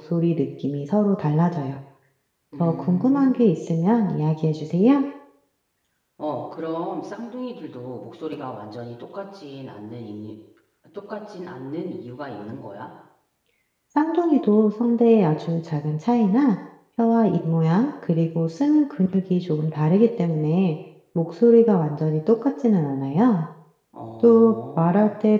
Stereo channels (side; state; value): both; identical; correlation 1.00